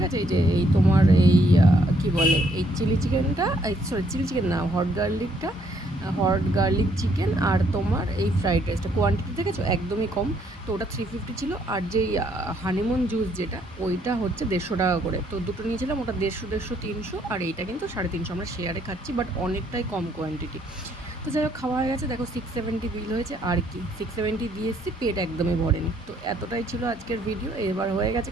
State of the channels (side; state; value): both; normal; correlation 0.69